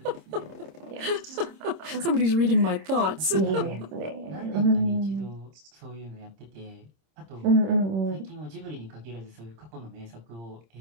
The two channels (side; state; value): left; late; 26 ms